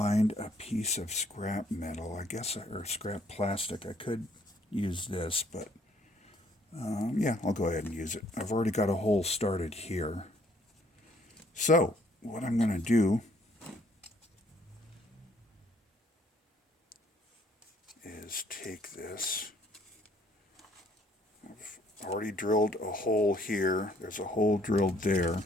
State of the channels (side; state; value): both; normal; correlation 0.64